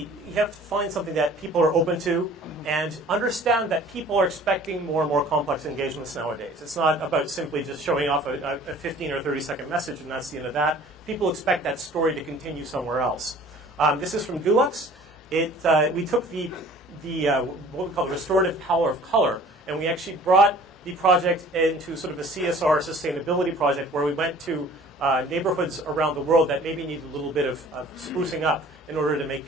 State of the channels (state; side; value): normal; both; correlation 0.49